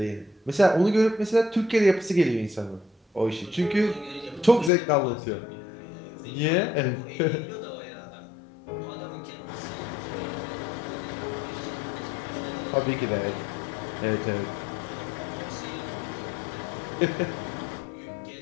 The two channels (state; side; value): drops out; right; at 4.7 s